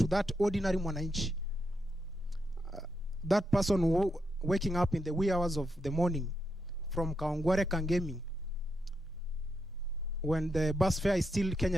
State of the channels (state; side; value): normal; both; correlation 0.83